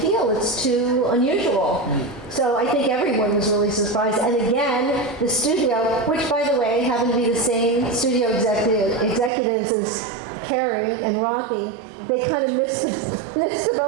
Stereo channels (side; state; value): left; drops out; at 9.3 s